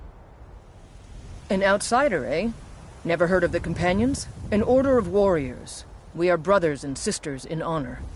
An outsider, eh? Never heard of the Companions? An order of warriors. We are brothers and sisters in honor.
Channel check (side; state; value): both; identical; correlation 1.00